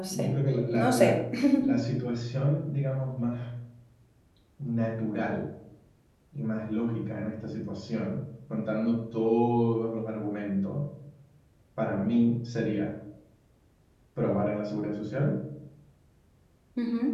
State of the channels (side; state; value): both; identical; correlation 1.00